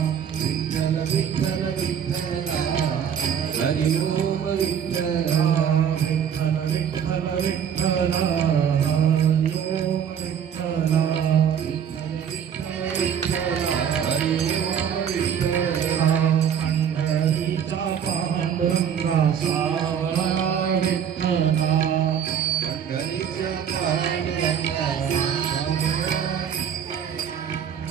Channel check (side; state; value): left; quieter; 8.3 dB